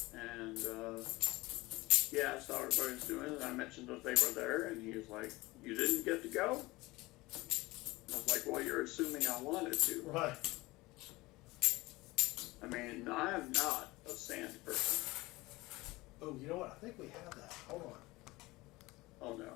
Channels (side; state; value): right; quieter; 21.1 dB